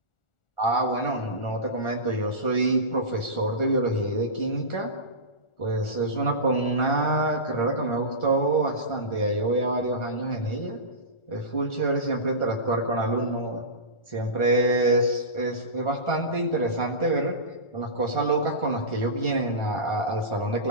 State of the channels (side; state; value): right; late; 1.4 ms